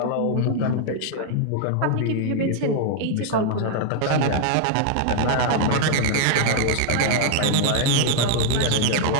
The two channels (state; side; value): different; both; correlation 0.00